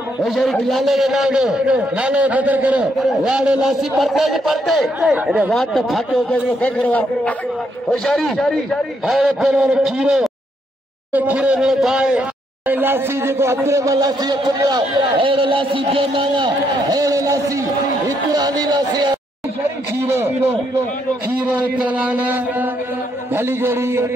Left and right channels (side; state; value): both; normal; correlation 0.75